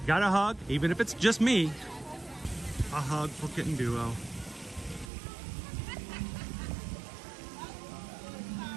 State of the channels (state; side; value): drops out; left; at 5.1 s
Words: Got a hug, even if it's just me. A hug for Kitten Duo.